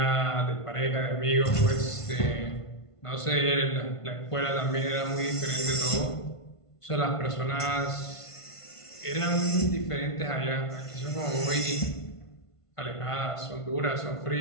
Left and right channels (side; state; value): right; late; 1.5 ms